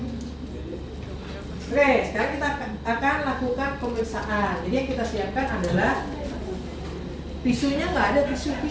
Oke, sekarang kita akan lakukan pemeriksaan. Jadi yang kita siapkan adalah tisunya, nggak ada tisu.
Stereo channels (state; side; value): identical; both; correlation 1.00